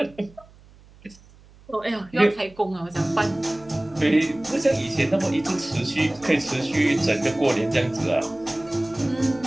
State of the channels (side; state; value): right; noise; hum, 25 dB below the sound